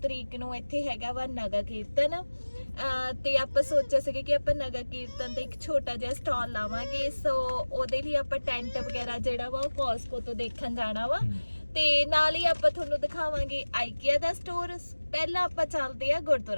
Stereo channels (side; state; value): both; inverted; correlation -1.00